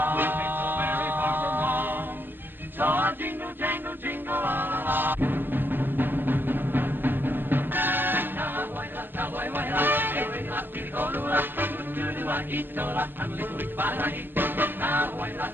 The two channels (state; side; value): late; left; 0.098 ms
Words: Ain't so very far from wrong. So I'll jingle, jangle, jingle all along. Cowboy,